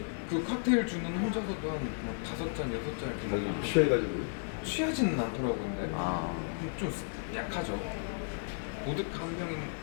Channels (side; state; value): right; silent; 55 dB below the other